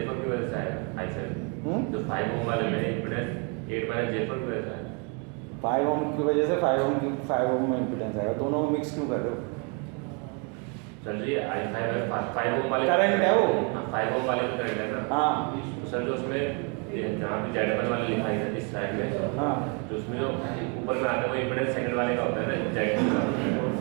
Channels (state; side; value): quieter; left; 34.9 dB